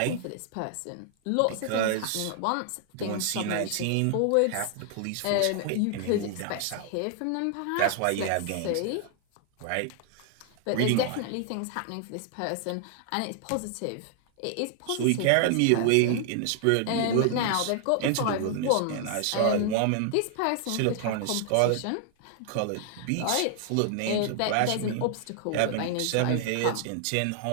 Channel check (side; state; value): both; different; correlation 0.00